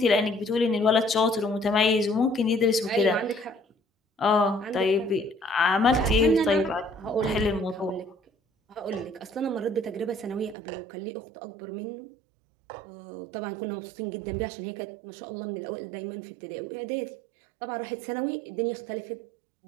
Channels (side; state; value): left; drops out; at 10.6 s